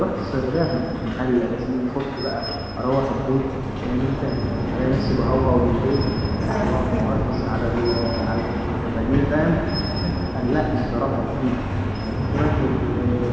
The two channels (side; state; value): both; identical; correlation 1.00